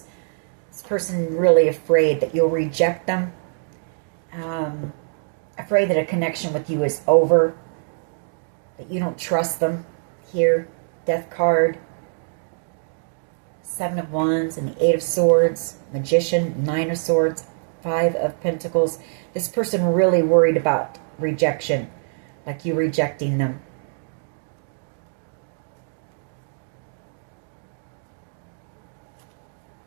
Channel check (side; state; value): left; silent; digital silence